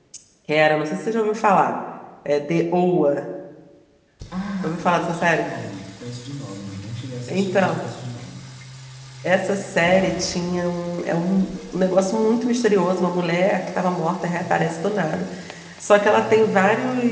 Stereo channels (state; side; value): identical; both; correlation 1.00